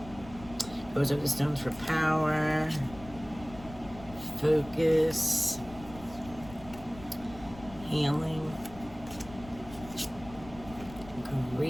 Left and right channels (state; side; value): noise; left; rumble, 17 dB below the sound